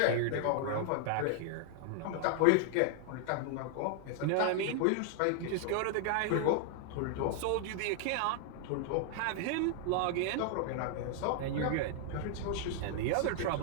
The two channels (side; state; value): both; different; correlation 0.00